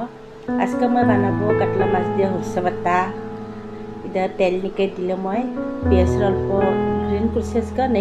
आज का मैं बनाबो काटला माछ दिया हरसे बाता इदा तेल निके दिले मैं पियाज अल्प ग्रीन प्रोसेस का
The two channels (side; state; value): both; identical; correlation 1.00